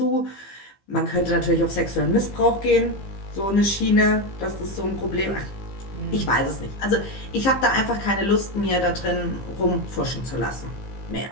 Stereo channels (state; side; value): late; right; 15 ms